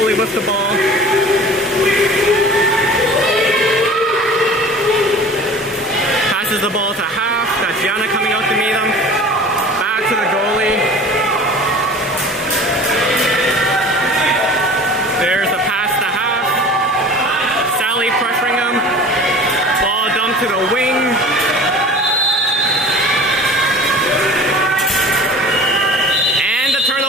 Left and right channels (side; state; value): both; normal; correlation 0.41